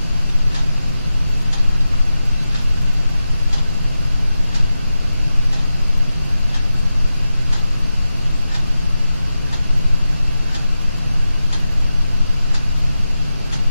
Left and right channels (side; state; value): both; inverted; correlation -0.91